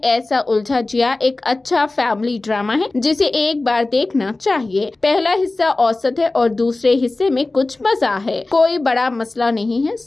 उलझा जिया एक अच्छा फैमिली ड्रामा है जिसे एक बार देखना चाहिए। पहला हिस्सा औसत है और दूसरे हिस्से में कुछ मजा है। कोई बड़ा मसला नहीं है,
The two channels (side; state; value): right; quieter; 3.1 dB